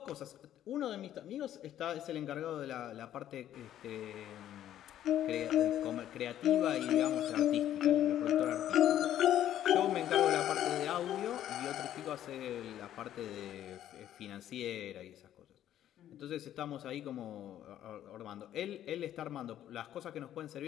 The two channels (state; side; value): quieter; right; 11.6 dB